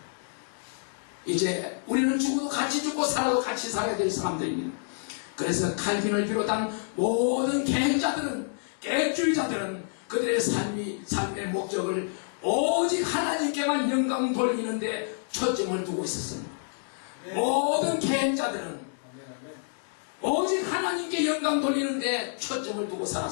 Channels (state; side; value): silent; right; digital silence